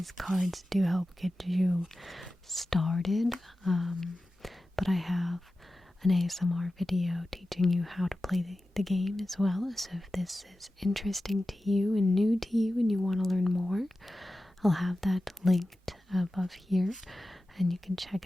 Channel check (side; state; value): both; normal; correlation 0.94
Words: cards do help get you started. But I have an ASMR video teaching you how to play the game as well. So if this is interesting to you and new to you and you want to learn more, I'll have that linked above here and you can check